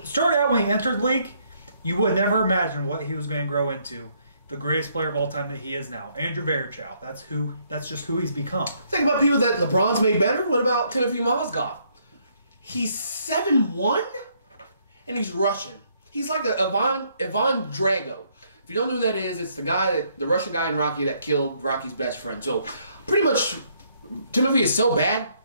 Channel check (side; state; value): both; inverted; correlation -0.69